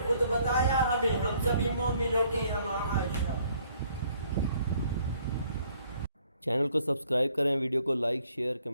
خود بتایا ہمیں، ہم سبھی مومنوں کی ماں عائشہ۔ چینل کو سبسکرائب کریں، ویڈیو کو لائک، شیئر،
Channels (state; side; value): inverted; both; correlation -0.63